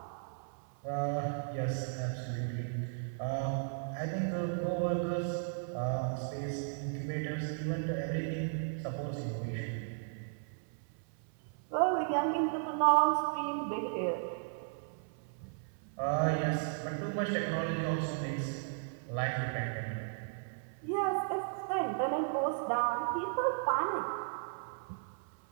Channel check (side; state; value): left; silent; 54 dB below the other